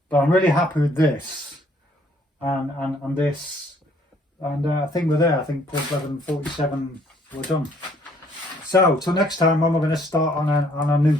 But I'm really happy with this and this. And I think we're there. I think Porthleven 47, we're done. So till next time, I'm going to start on a new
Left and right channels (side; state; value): both; normal; correlation 0.63